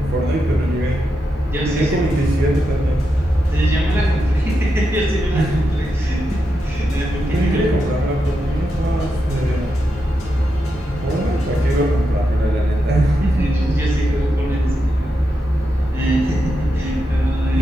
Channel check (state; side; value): normal; both; correlation 0.86